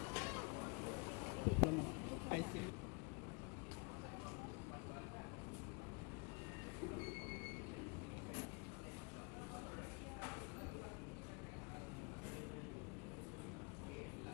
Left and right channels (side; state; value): right; quieter; 32.6 dB